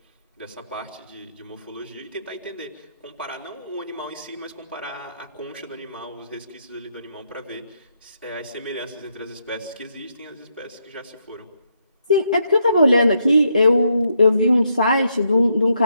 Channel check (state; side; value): inverted; both; correlation -0.77